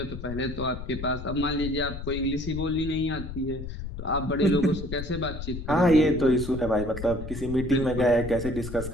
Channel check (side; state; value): left; noise; rumble, 8 dB below the sound